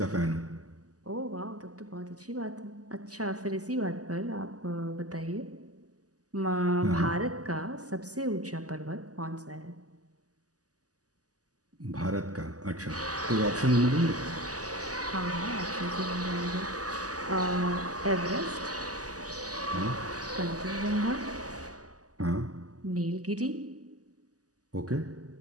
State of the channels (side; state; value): left; late; 0.67 ms